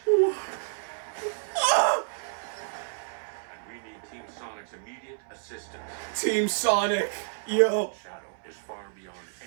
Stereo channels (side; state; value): left; silent; 58 dB below the other